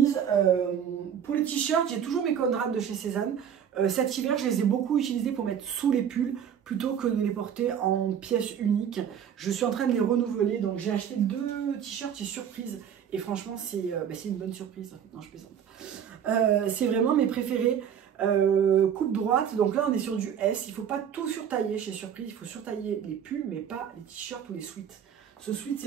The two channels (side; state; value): left; quieter; 8.5 dB